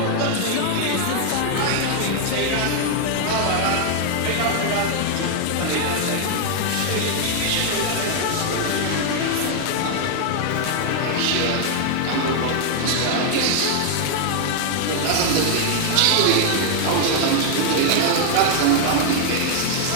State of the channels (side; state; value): both; different; correlation 0.00